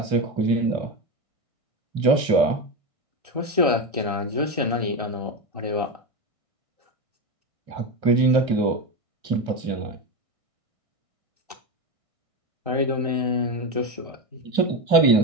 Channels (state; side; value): late; left; 1.6 ms